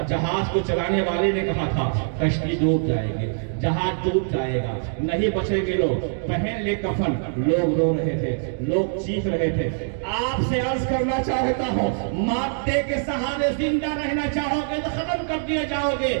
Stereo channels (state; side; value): silent; left; digital silence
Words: جہاز کو چلانے والے نے کہا تھا کشتی ڈوب جائے گی، جہاز ڈوب جائے گا، نہیں بچیں گے لوگ. پہن لے کفن. لوگ رو رہے تھے، لوگ چیخ رہے تھے. آپ سے عرض کرنا چاہتا ہوں، مادے کے سہارے زندہ رہنا چاہو گے تو ختم کر دیے جاؤ گے.